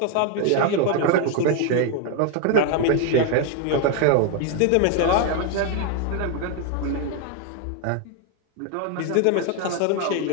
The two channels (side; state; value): both; different; correlation 0.01